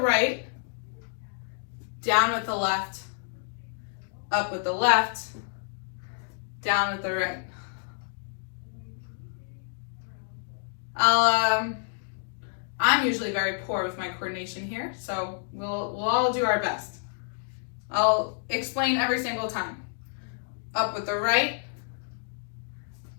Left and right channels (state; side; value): silent; right; digital silence